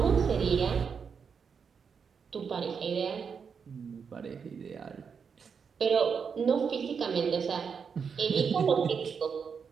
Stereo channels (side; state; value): left; quieter; 6.2 dB